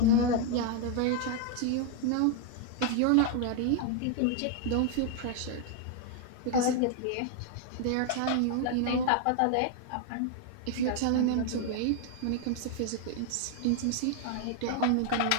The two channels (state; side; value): different; both; correlation 0.00